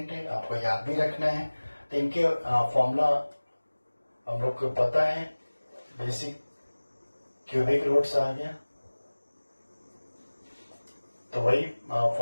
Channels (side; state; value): both; inverted; correlation -1.00